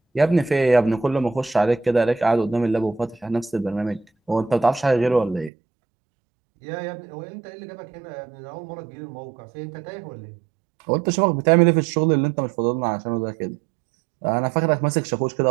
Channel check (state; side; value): drops out; left; at 5.5 s